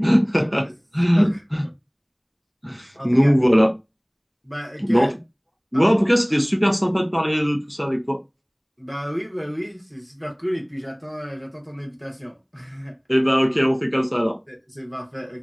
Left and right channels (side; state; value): both; identical; correlation 1.00